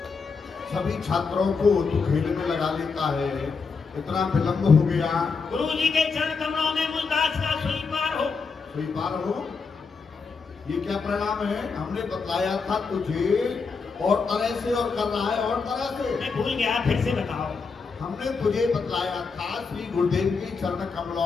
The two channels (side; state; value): right; quieter; 4.9 dB